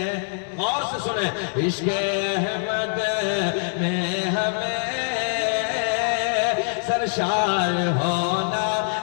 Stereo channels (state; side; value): silent; right; 63 dB below the other